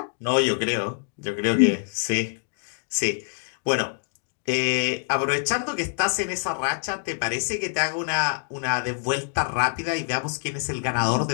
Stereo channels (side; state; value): right; silent; 61 dB below the other